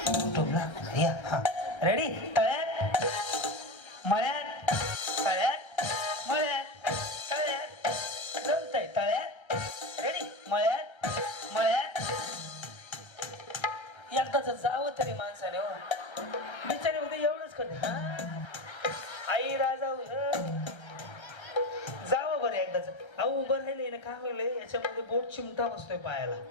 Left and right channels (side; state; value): right; late; 1.3 ms